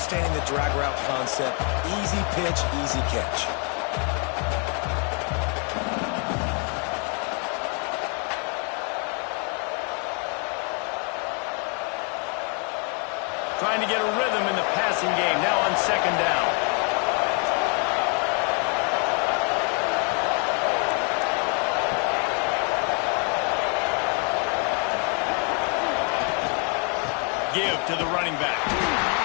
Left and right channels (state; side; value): quieter; right; 38.1 dB